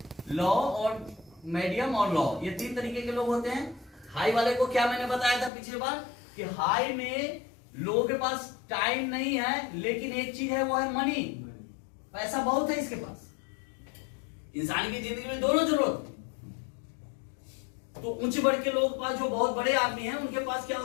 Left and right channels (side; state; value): right; drops out; at 5.5 s